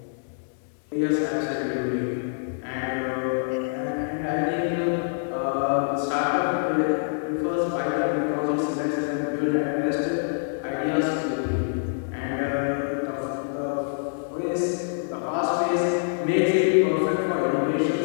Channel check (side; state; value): right; silent; digital silence